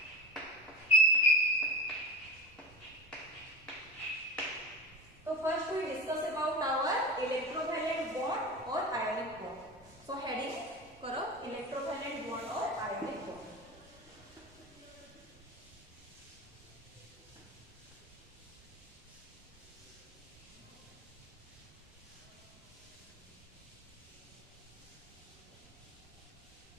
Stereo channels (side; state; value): both; normal; correlation 0.28